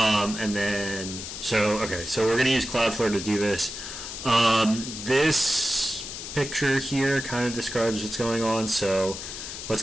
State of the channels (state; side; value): noise; left; hiss, 8 dB below the sound